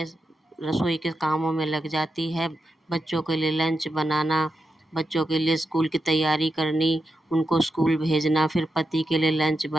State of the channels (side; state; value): both; normal; correlation 0.88